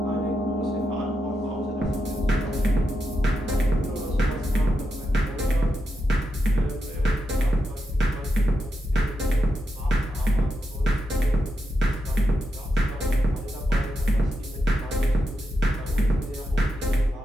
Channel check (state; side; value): normal; both; correlation 0.86